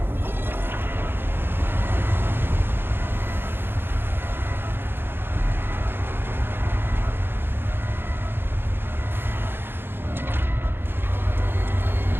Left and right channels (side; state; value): left; late; 0.10 ms